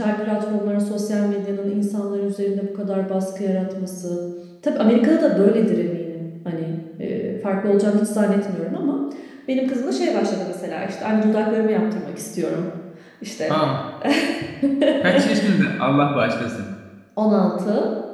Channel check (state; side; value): identical; both; correlation 1.00